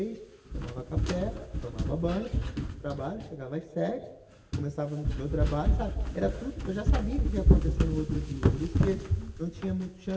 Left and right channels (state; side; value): identical; both; correlation 1.00